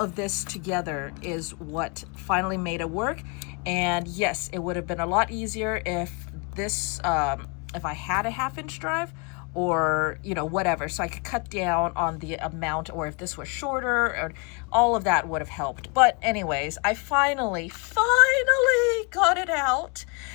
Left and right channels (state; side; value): quieter; right; 32.3 dB